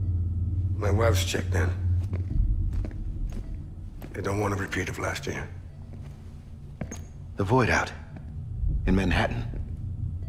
My wife's checked in. They don't want a repeat of last year. The Void Out in Manhattan.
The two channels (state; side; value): identical; both; correlation 1.00